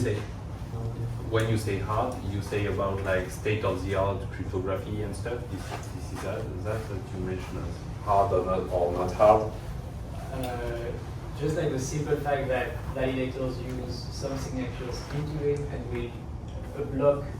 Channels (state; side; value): identical; both; correlation 1.00